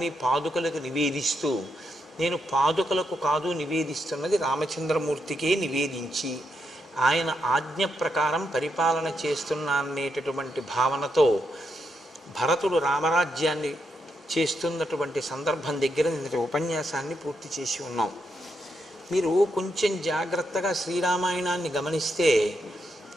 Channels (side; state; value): both; normal; correlation 0.81